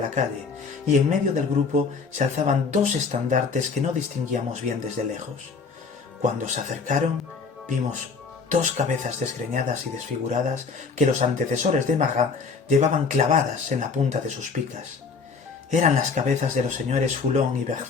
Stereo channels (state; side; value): quieter; right; 4.9 dB